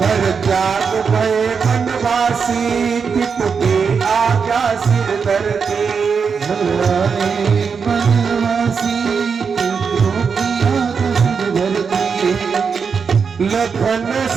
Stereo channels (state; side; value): quieter; left; 5.8 dB